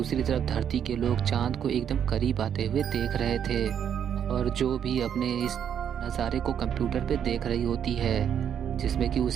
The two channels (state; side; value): quieter; left; 8.7 dB